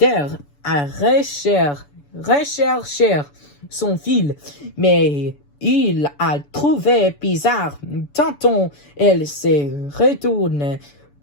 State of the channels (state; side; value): late; right; 6.9 ms